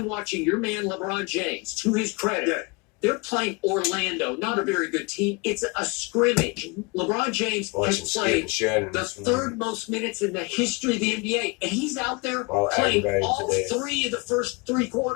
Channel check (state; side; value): quieter; right; 29.3 dB